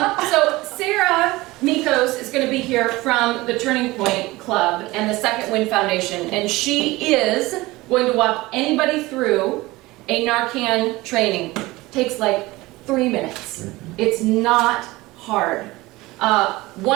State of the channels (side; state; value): left; quieter; 20.2 dB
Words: So Sarah Mikos is going to be here from the Turning Point Club and the Second Wind Foundation, and she is going to walk anybody through a Narcan training. Takes like 3 minutes. It's not hard.